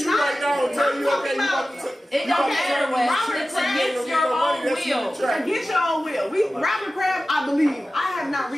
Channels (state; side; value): normal; both; correlation 0.95